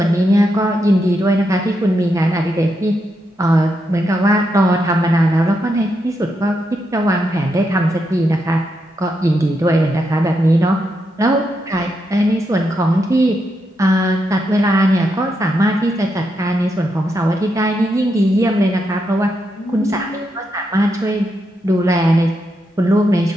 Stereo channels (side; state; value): both; normal; correlation 0.82